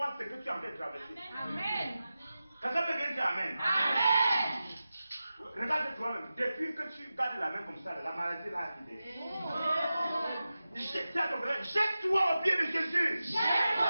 ce que tu es en train de traverser. Amen. Quelqu'un peut bien dire Amen. Amen. Regarde toi-même, depuis que tu gardes la main comme ça, la maladie là a quitté. Jette-toi au pied de Jésus.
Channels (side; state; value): both; inverted; correlation -0.93